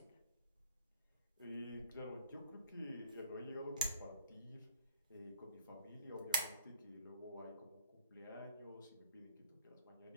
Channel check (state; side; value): inverted; both; correlation -0.61